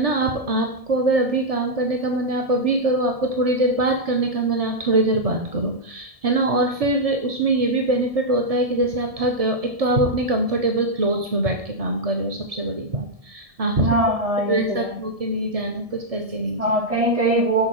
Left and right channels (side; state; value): left; late; 1.7 ms